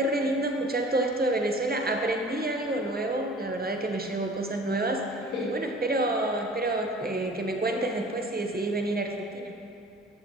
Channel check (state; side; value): normal; both; correlation 0.46